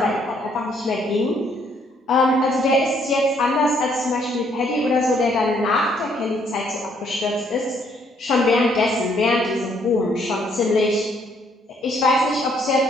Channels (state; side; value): normal; both; correlation 0.68